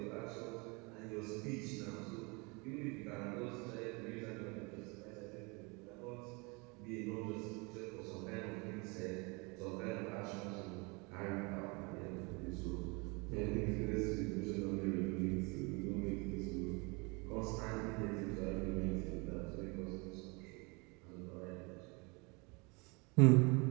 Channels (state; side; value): quieter; left; 29.0 dB